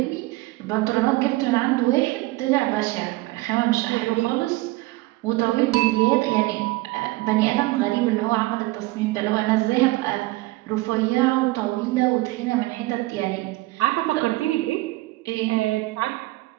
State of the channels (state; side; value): quieter; left; 20.5 dB